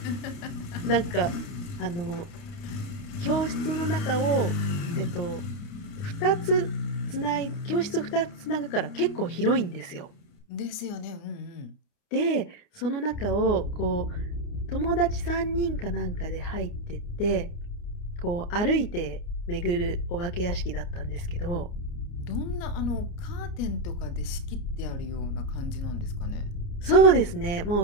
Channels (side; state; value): right; late; 29 ms